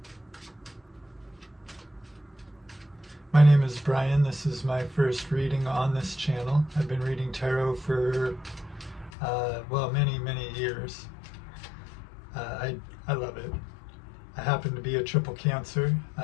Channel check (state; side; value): drops out; right; at 9.1 s